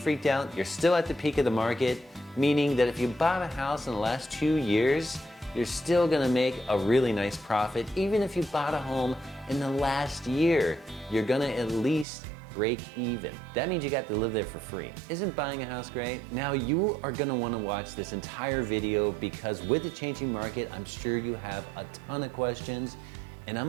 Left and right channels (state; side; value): drops out; left; at 12.1 s